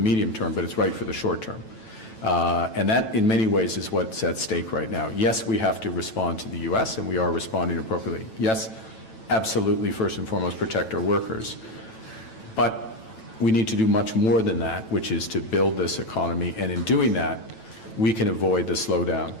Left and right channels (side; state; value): right; late; 9.1 ms